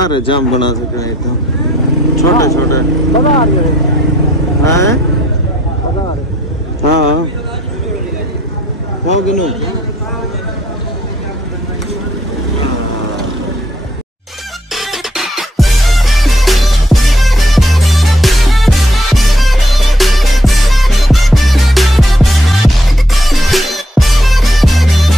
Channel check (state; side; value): normal; both; correlation 0.68